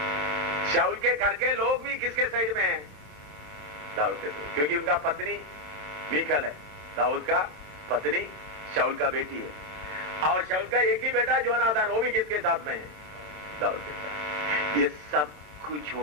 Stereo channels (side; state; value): left; late; 27 ms